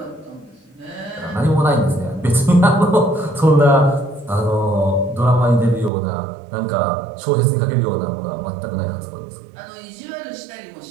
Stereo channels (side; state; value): left; drops out; at 5.9 s